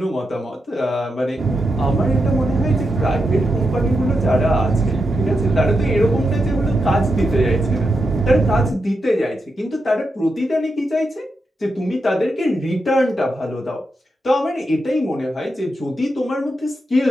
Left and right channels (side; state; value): both; normal; correlation 0.86